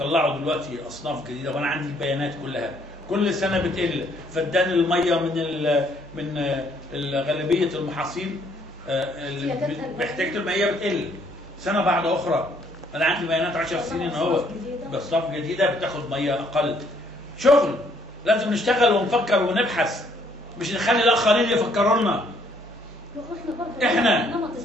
دلوقتي اصناف جديده وانا عندي البيانات كلها، كل سنه بتقل. فدان الميه من غالبيه المحاصيل محتاجه المائيه بتقل سنه بعد اخرى. انا عندي بيانات 10 سنين اهو، باصناف جديده بتاخد ميه اقل. شغل لازم نشتغل ونفكر ونبحث، مش نخلي الاخرين يفكروا لنا. احنا نمط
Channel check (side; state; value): both; normal; correlation 0.66